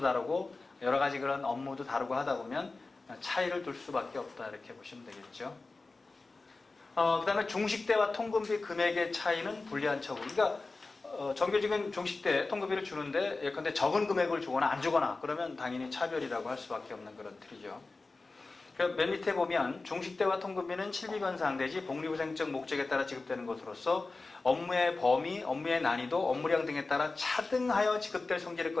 다르고 여러 가지 그런 업무도 다르고 하다 보면 차이를 둘 수밖에 없다 이렇게 보시면 되겠죠. 그 다음에 중식대와 통근비 금액의 차이는 불리한 처우. 그러니까 정규직은 중식대 통근비를 주는데 예컨대 적은 금액을 주거나 안 주거나 그러면 당연히 차별이라고 할 수밖에 없는 그런 틀이죠. 맨 밑에 보면 중식대와 통근비는 실비변상 내지 복리후생적 목적에 따라 지급되는 것으로서 업무의 범위, 업무의 난이도, 업무량 등에 따라 차등하여 지급될 성질의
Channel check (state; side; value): quieter; right; 3.6 dB